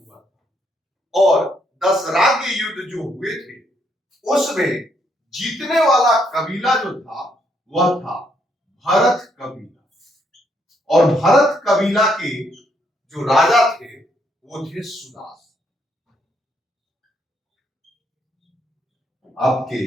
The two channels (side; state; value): both; normal; correlation 0.73